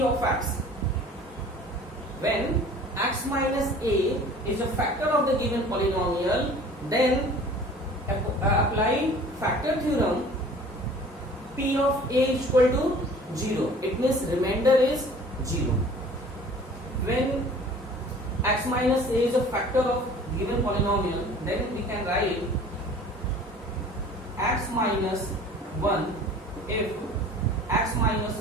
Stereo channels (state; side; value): normal; both; correlation 0.47